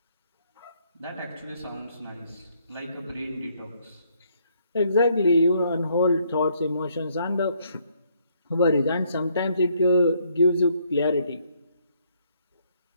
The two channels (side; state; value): both; inverted; correlation -0.70